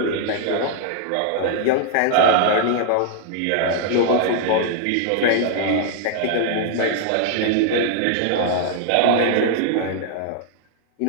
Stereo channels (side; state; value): both; different; correlation 0.00